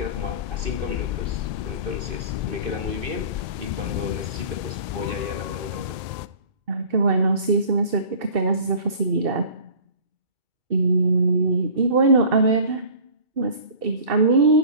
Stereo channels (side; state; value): left; late; 2.6 ms